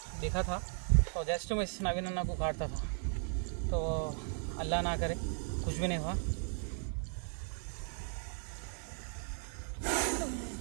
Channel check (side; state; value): left; silent; 53 dB below the other